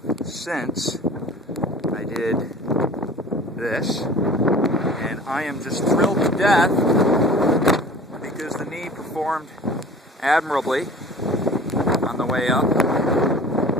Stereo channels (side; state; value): both; normal; correlation 0.44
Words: since I did this, and I am just thrilled to death because the knee performed admirably on the way up.